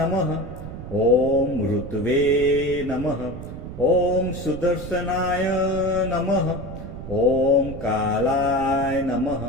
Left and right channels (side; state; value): right; noise; rumble, 10 dB below the sound